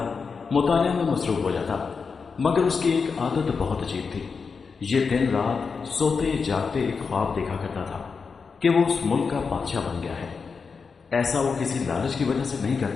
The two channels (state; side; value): quieter; right; 5.2 dB